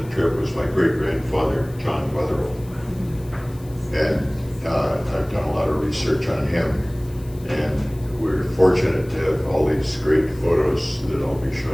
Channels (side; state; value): left; noise; hiss, 24 dB below the sound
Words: the trip was my great-grandfather, John Wetherill. And I've done a lot of research on him, and we're fortunate to have all these great photos that I'll be